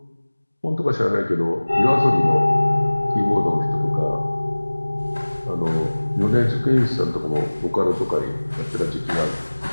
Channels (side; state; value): both; inverted; correlation -1.00